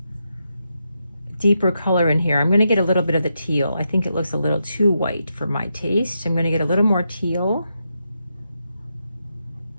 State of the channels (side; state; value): both; inverted; correlation -0.84